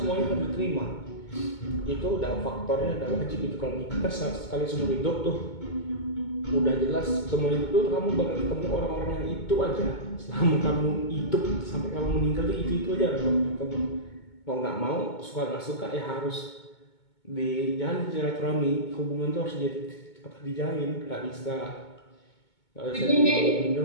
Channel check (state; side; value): late; right; 2.2 ms